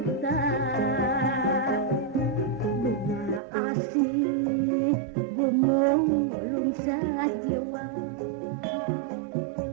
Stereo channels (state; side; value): drops out; left; at 3.4 s